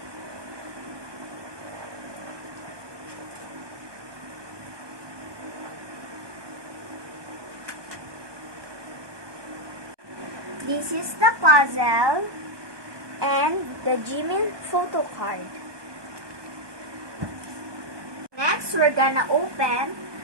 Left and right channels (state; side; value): late; left; 1.2 ms